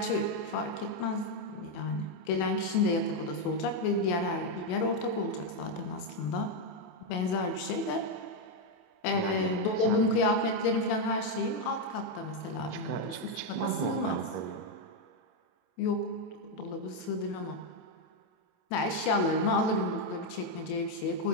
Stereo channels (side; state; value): right; late; 28 ms